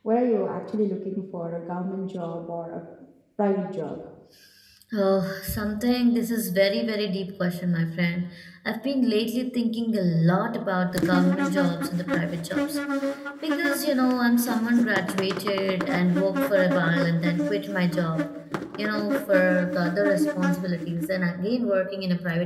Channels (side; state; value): both; identical; correlation 1.00